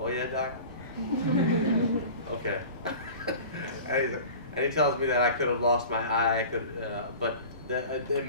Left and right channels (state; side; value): inverted; both; correlation -0.39